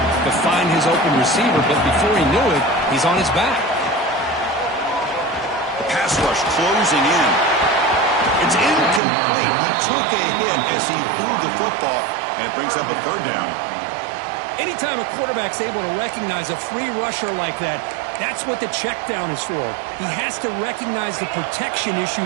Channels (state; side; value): drops out; left; at 9.0 s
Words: find his open receiver, but before he knew it, he's on his back. The pass rush closing in. It's incomplete. He took a hit as he threw the football, and it brings up a third down. Anytime a quarterback's able to recognize a free rusher like that, that's what the check down is for. He has to recognize the protection